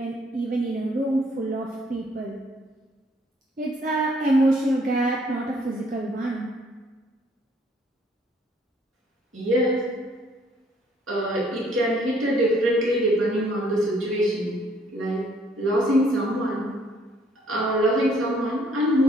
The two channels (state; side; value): normal; both; correlation 0.63